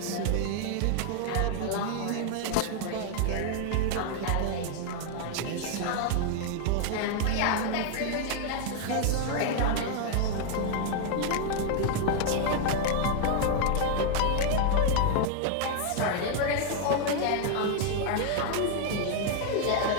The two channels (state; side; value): different; both; correlation 0.00